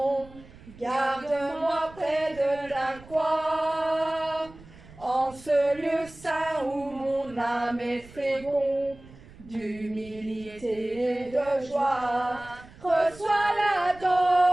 Garde-moi près de ta croix. En ce lieu saint où mon âme est féconde d'humilité et de joie, reçois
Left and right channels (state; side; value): noise; right; rumble, 21 dB below the sound